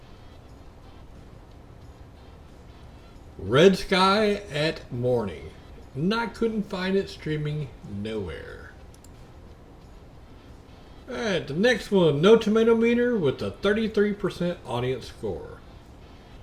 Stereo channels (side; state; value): both; identical; correlation 1.00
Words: Red Sky at Morning. And I couldn't find it streaming nowhere. Alright, the next one, No Tomato Meter with a 33% audience score.